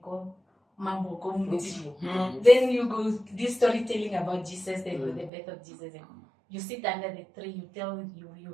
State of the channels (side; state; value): left; drops out; at 5.3 s